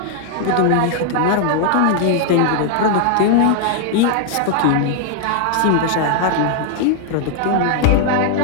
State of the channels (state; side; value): different; both; correlation 0.00